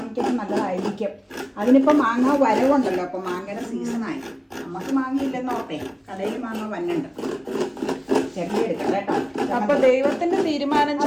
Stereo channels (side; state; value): both; identical; correlation 1.00